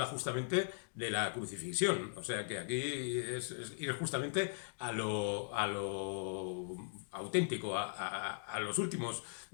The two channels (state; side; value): silent; right; digital silence